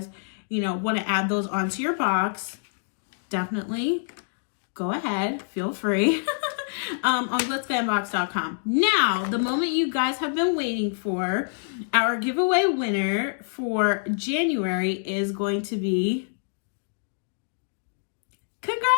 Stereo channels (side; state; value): right; silent; digital silence